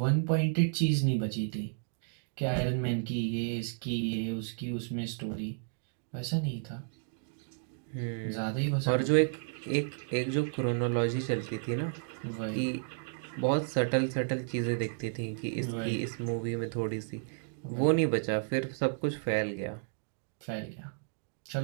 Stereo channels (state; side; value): silent; left; digital silence